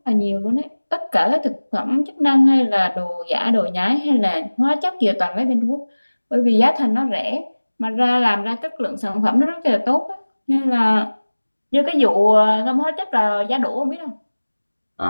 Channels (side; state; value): both; inverted; correlation -1.00